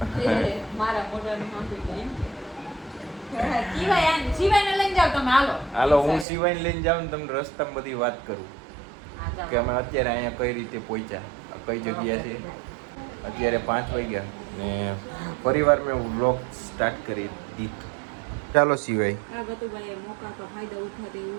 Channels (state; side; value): drops out; left; at 6.2 s